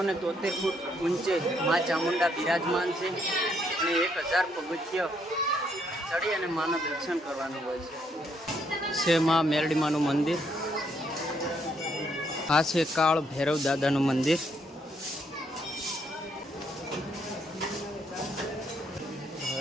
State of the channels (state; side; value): normal; both; correlation 0.72